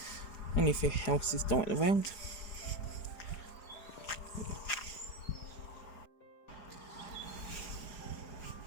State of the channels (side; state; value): right; late; 4.9 ms